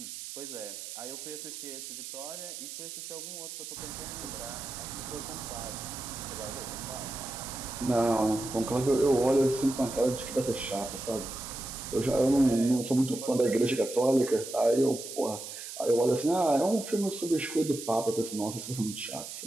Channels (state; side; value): noise; right; hiss, 9 dB below the sound